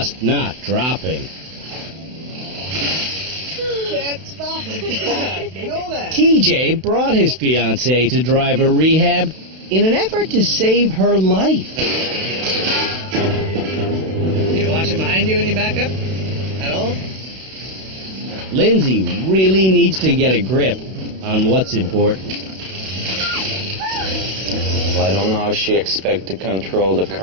not dropping. TJ brought his fiancée to driver rehab in an effort to save her life. Do you watch it behind you when you back up? At all? Lindsay really needs to get a grip on what's important. Well, I don't know how she expects to control the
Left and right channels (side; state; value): left; late; 32 ms